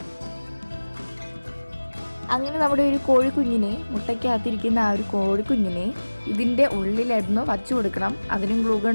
അങ്ങനെ നമ്മുടെ ഒരു കോഴിക്കുഞ്ഞിനെ, മുട്ടയ്ക്കകത്തിരിക്കുന്ന ആ ഒരു കോഴിക്കുഞ്ഞിനെ ഇതിൻ്റെ ഉള്ളിലായിരുന്നു വച്ചു കൊടുക്കണം. അതിനും ഗ്ലൂ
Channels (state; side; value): inverted; both; correlation -1.00